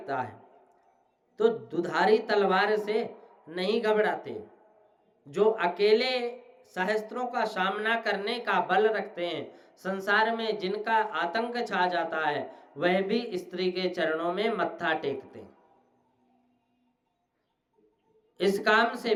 है तो दुधारी तलवार से नहीं घबराते। जो अकेले सहस्त्रों का सामना करने का बल रखते हैं, संसार में जिनका आतंक छा जाता है, वह भी स्त्री के चरणों में मत्था टेकते हैं। इस काम से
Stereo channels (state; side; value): identical; both; correlation 1.00